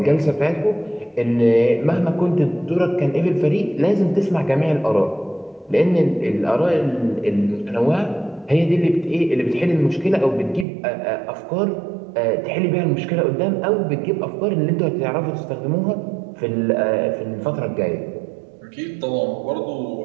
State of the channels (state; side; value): drops out; left; at 10.7 s